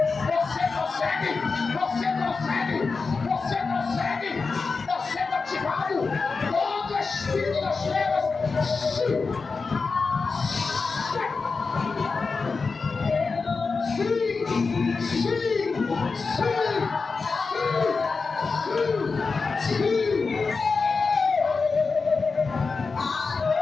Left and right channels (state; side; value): quieter; right; 4.5 dB